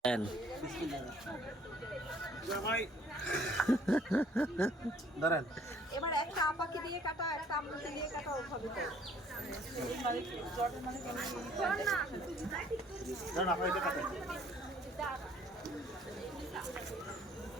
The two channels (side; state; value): both; normal; correlation 0.58